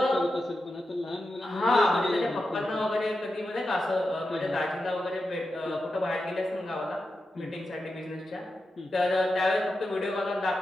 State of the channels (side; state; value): both; normal; correlation 0.90